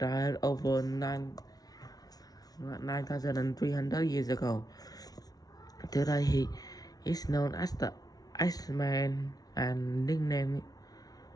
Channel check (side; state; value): right; late; 0.18 ms